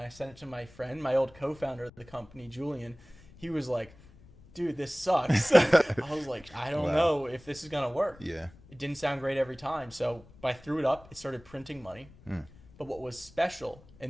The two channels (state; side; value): noise; left; rumble, 23 dB below the sound